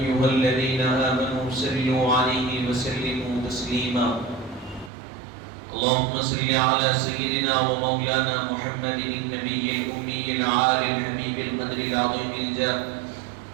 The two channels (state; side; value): drops out; left; at 4.9 s